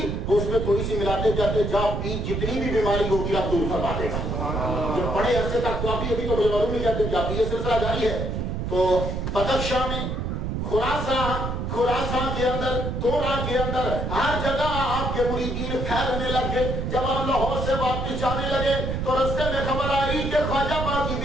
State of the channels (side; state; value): right; noise; rumble, 2 dB below the sound